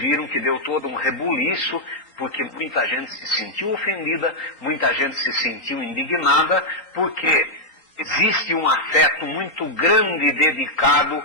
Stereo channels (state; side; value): late; right; 4.3 ms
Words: que deu todo um rebuliço, porque muita gente se sentiu ofendida, muita gente se sentiu indignada, porque existe um afeto muito grande dedicado